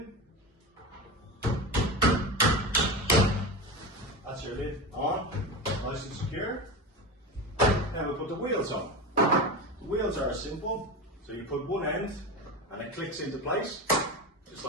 That's your lid on, nice and secure. Now we put the wheels on. The wheels are simple, so you put one end and it clicks into place, just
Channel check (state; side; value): normal; both; correlation 0.23